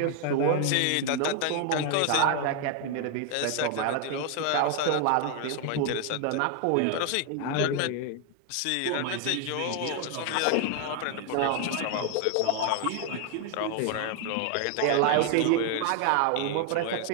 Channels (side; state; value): both; different; correlation 0.00